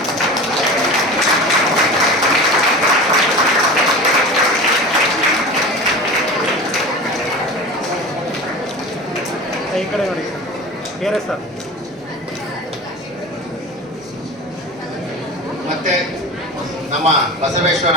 ಈ ಕಡೆ ನೋಡಿ ಬೇರೆ ಸರ್. ಮತ್ತೆ ನಮ್ಮ ಬಸವೇಶ್ವರ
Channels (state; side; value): normal; both; correlation 0.32